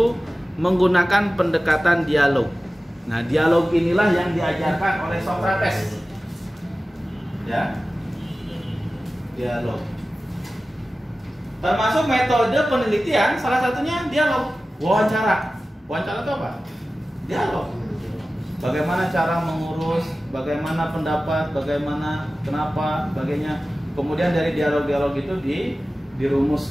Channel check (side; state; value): both; normal; correlation 0.96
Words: menggunakan pendekatan dialog. Nah, dialog inilah yang diajarkan oleh Socrates. Ya. Dialog. Termasuk metode penelitian, salah satunya dialog. Wawancara. Wawancara itu apa? Dialog. Bagaimana cara mengurus, bagaimana pendapat, bagaimana, kenapa, sebagainya. Kemudian dari dialog-dialog itu